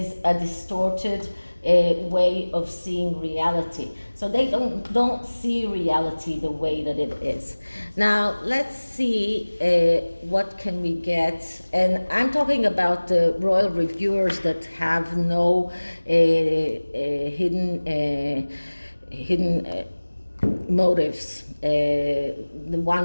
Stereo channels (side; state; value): both; inverted; correlation -1.00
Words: a distorted way of seeing reality. So they don't see reality the way that it is. Now let's see what can we get. And I'm talking about the royal reviewers that have no hidden motives, the